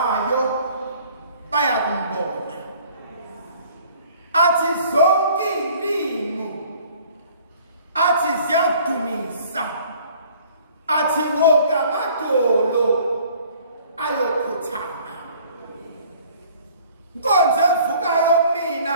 bayakumbona. Athi zonke izilimi athi ziyadumisa. Athi wonke amadolo ayokhuthama. Inkonzo evukayo mina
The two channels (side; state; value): both; inverted; correlation -0.54